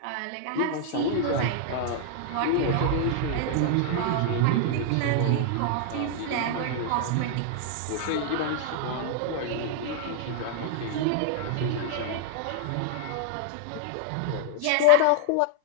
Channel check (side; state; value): both; different; correlation 0.00